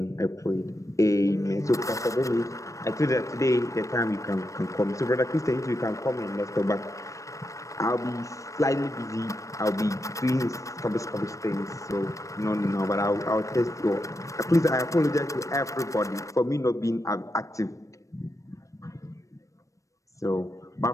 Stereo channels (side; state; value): right; late; 0.16 ms